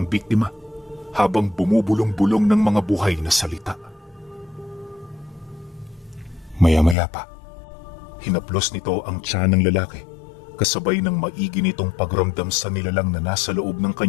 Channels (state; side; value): drops out; right; at 7.0 s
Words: biktima habang bumubulong-bulong ng mga buhay na salita. Maya-maya pa, hinaplos nito ang tiyan ng lalaki kasabay ng maigi nitong pagramdam sa nilalang na nasa loob ng